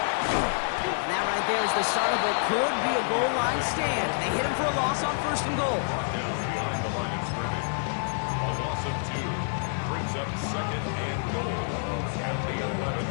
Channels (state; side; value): silent; right; digital silence